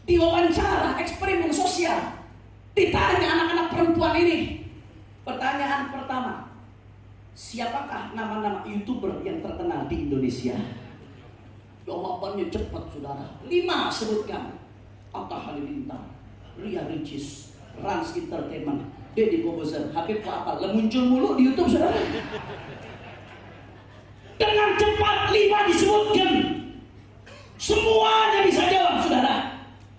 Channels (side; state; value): both; identical; correlation 1.00